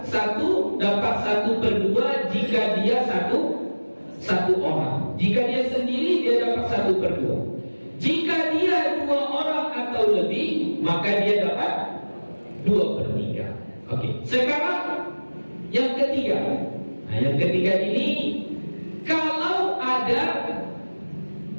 1 dapat 1/2 jika dia satu orang. Jika dia sendiri dia dapat 1/2. Jika dia 2 orang atau lebih, maka dia dapat 2/3. Oke. Sekarang yang ketiga. Nah, yang ketiga ini kalau ada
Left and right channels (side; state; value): both; inverted; correlation -1.00